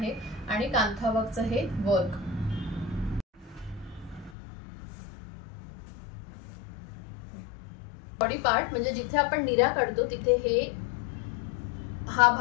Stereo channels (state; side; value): drops out; right; at 4.4 s